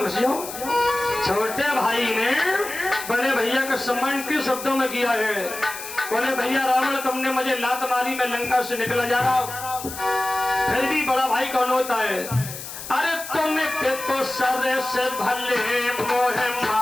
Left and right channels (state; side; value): noise; left; hiss, 10 dB below the sound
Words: घुस जाओ। छोटे भाई ने बड़े भैया का सम्मान किन शब्दों में किया है? बोले भैया रावण तुमने मुझे लात मारी, मैं लंका से निकला जा रहा हूं। फिर भी बड़ा भाई कौन होता है? अरे तुम्हें तो सर से भले मोहे